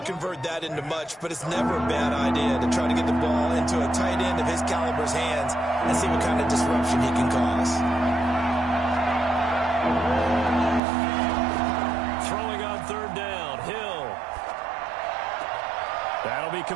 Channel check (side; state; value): left; drops out; at 10.8 s